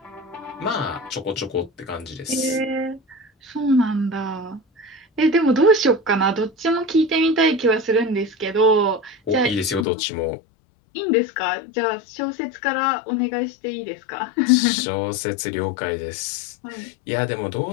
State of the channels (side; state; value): right; drops out; at 9.9 s